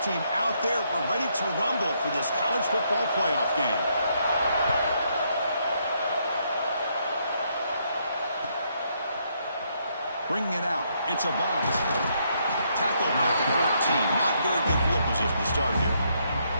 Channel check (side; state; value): both; inverted; correlation -0.74